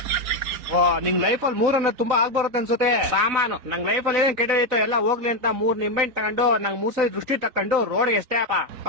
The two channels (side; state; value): left; late; 3.9 ms